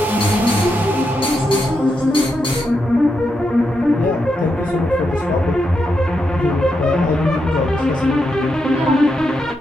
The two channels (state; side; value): normal; both; correlation 0.84